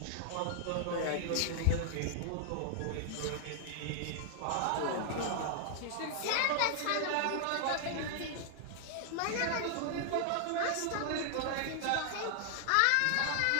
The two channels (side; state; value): both; different; correlation -0.01